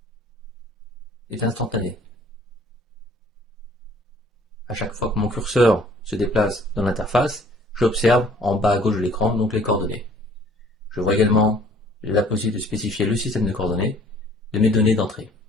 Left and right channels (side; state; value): both; normal; correlation 0.56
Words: est instantané. À chaque fois que mon curseur se déplace dans l'interface, j'observe en bas à gauche de l'écran donc les coordonnées. Je vois également la possibilité de spécifier le système de coordonnées de mes données d'entrée.